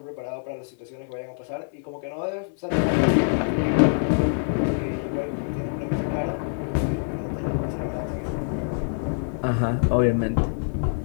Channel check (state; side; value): silent; right; digital silence